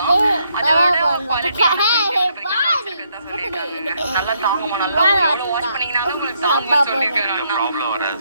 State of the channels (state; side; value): inverted; both; correlation -0.74